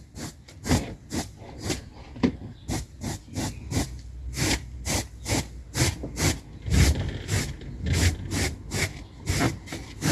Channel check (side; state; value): both; identical; correlation 1.00